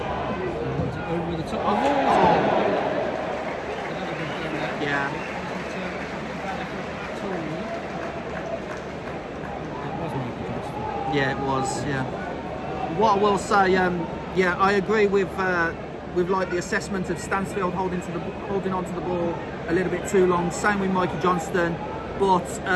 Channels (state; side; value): identical; both; correlation 1.00